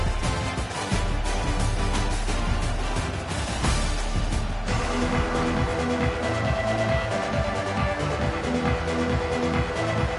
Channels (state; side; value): identical; both; correlation 1.00